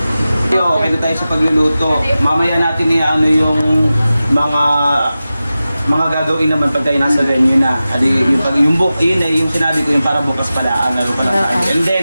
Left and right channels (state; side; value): inverted; both; correlation -0.94